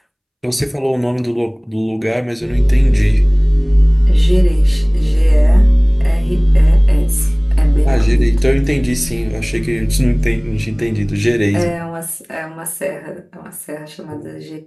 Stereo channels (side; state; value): both; identical; correlation 1.00